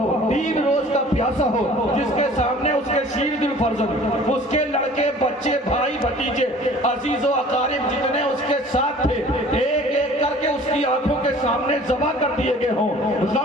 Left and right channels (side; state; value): both; normal; correlation 0.48